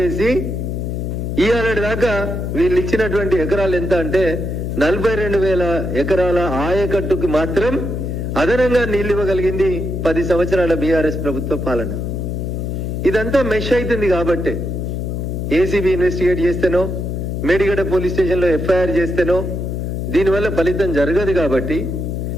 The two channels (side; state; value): left; noise; hum, 3 dB below the sound